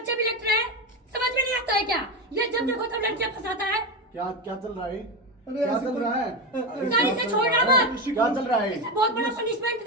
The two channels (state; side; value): normal; both; correlation 0.15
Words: भी लेट रहे हैं, समझ में नहीं आता है क्या? ये जब देखो तब लड़कियां फंसाता है। क्या क्या चल रहा है? अरे क्या चल रहा है? सर इसे छोड़ना मत। क्या चल रहा है? इसे बहुत बड़ा पनिशमेंट